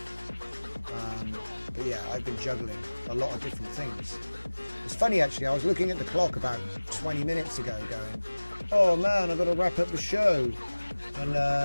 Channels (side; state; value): both; inverted; correlation -1.00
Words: But yeah, I've been juggling a lot of different things. It's funny actually, I was looking at the clock about 20 minutes ago going, oh man, I've got to wrap up the show. And